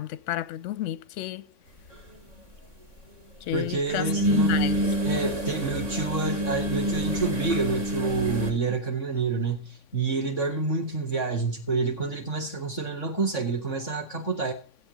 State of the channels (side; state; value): right; late; 3.6 ms